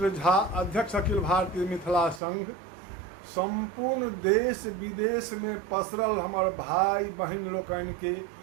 झा अध्यक्ष अखिल भारतीय मिथिला संघ संपूर्ण देश विदेश में पसरल हमर भाई बहन लोकन के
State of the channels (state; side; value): drops out; left; at 2.2 s